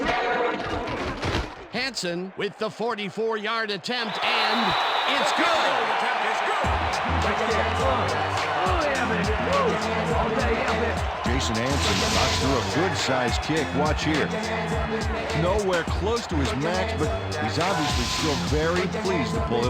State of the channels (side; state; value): both; identical; correlation 1.00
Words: Hansen with the 44-yard attempt, and it's good. Jason Hansen knocks through a good-sized kick. Watch here. Nowhere close to his max, but he's obviously still very pleased to pull